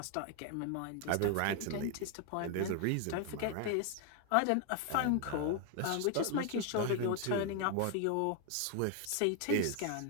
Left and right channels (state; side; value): different; both; correlation 0.01